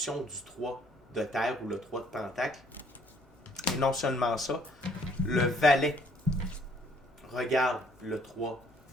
du 3 de terre ou le 3 de pentacle. Et non seulement ça, le valet regarde le 3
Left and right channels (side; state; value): both; normal; correlation 0.63